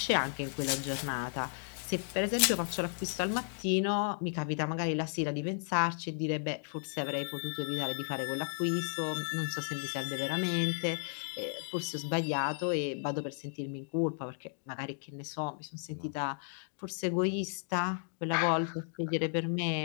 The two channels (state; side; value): silent; right; digital silence